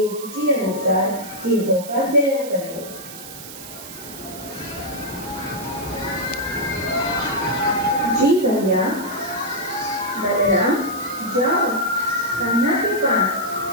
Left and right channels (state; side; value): noise; right; hiss, 13 dB below the sound